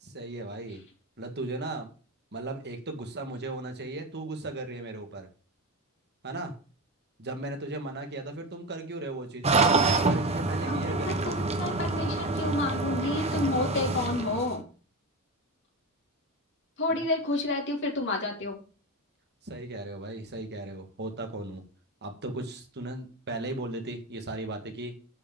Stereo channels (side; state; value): both; normal; correlation 0.20